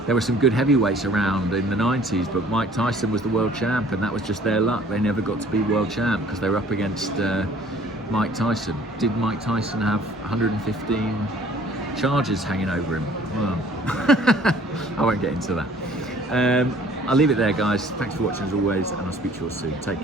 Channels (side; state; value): both; normal; correlation 0.54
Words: there were some good heavyweights around in the 90s, but Mike Tyson was the world champ, and that was just their luck. They never got to be world champ because they were up against Mike Tyson. Did Mike Tyson have 115 charges hanging over him? Well, I won't get into that. I'll leave it there, guys. Thanks for watching as always, and I'll speak to you all soon. Take